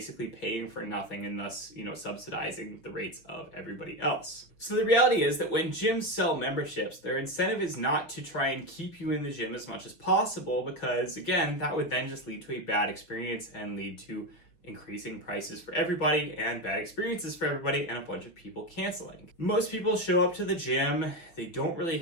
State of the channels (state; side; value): late; right; 6.2 ms